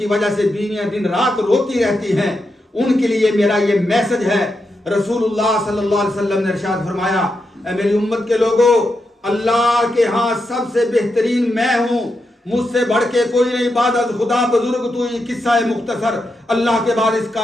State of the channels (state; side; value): normal; both; correlation 0.85